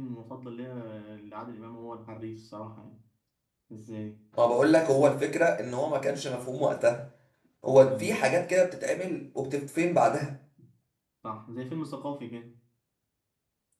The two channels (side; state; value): both; identical; correlation 1.00